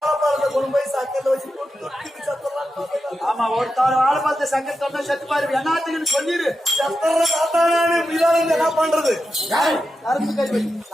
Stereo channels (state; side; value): normal; both; correlation 0.89